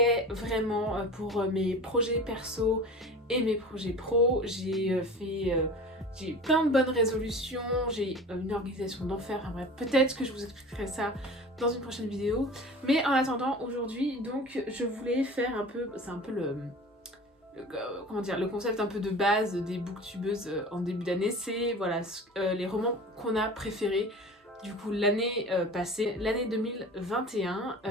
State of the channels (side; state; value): both; normal; correlation 0.38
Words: vraiment pour mes projets perso et mes projets pro. J'ai plein de bonnes résolutions, j'ai une organisation d'enfer. Enfin bref, peut-être que je vous expliquerai ça dans une prochaine vidéo. Mais en attendant, aujourd'hui, donc, je voulais faire un peu... C'est un peu comment dire, le concept un peu de base des booktubeuses en début d'année. C'est voilà, les romans qu'on a préférés. Du coup, l'année passée, l'année 2021,